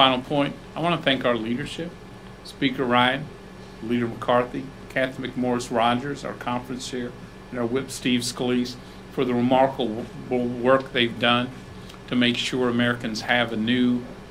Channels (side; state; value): both; identical; correlation 1.00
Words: point, I want to thank our leadership, Speaker Ryan, Leader McCarthy, Kathy McMorris Rogers, our conference chair, and our whip Steve Scalise for the remarkable work they've done to make sure Americans have a new